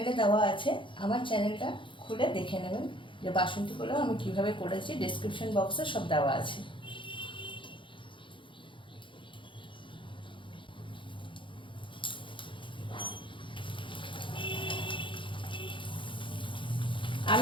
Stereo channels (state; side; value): late; right; 0.24 ms